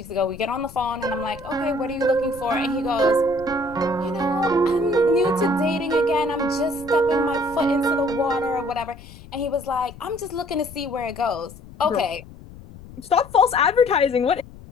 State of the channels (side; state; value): left; noise; rumble, 18 dB below the sound